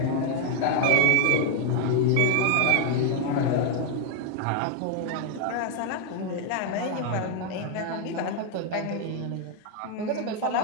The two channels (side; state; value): both; different; correlation 0.00